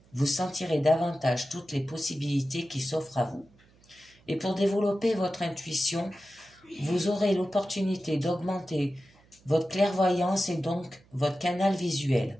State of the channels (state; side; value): noise; right; hum, 30 dB below the sound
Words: Vous sentirez davantage toutes les possibilités qui s'offrent à vous. Et pour développer votre intuition, vous aurez l'opportunité d'augmenter votre clairvoyance et donc votre canal visuel.